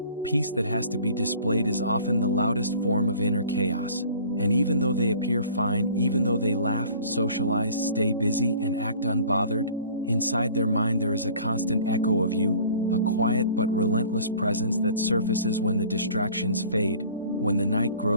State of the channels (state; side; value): inverted; both; correlation -0.48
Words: peace that has to be displayed is often the loudest form of inner chaos. And even though they appear fine, even though they laugh, socialize, stay busy, and act unbothered, inside their mind there is a constant echo of you, a quiet but relentless presence that surfaces when the distractions fade, when the night